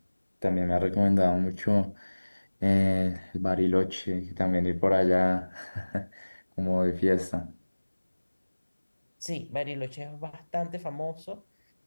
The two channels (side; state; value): both; inverted; correlation -1.00